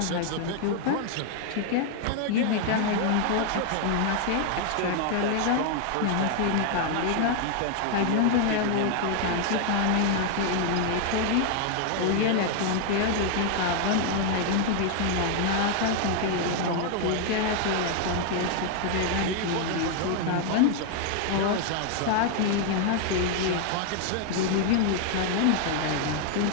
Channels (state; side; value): different; both; correlation 0.00